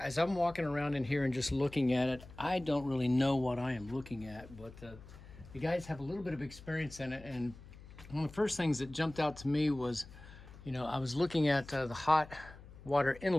I'm walking around in here and just looking at it, I don't really know what I am looking at, but you guys have a little bit of experience in it. And one of the first things that jumped out to me was, you know, I was looking at the hot water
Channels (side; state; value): left; noise; hum, 18 dB below the sound